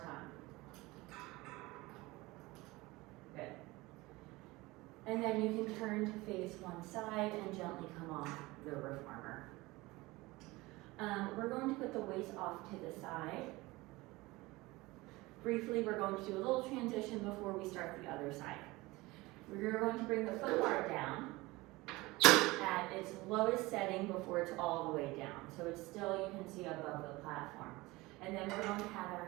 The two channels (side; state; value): left; quieter; 21.3 dB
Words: time. Good. And then you can turn to face one side and gently come off the reformer. We're going to put the waist off to the side. Briefly, we're going to do a little transition before we start the other side. We're going to bring the foot bar down at its lowest setting before it's all the way down. So it's still, you can see, above the platform. And then we're going to have